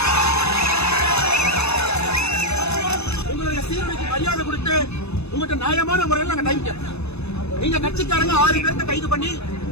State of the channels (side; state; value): right; late; 0.80 ms